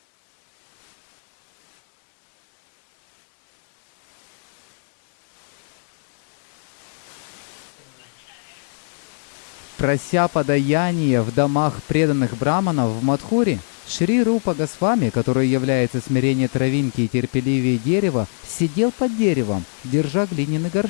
and singing beautiful songs about the pastimes of the Lord of Radha. So nice. Прося подаяние в домах преданных браманов в Мадхуре, Шри Рупа Госвами, который является смирение травинки и терпеливее дерева, сидел под деревом, держа глиняный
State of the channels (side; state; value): right; silent; 64 dB below the other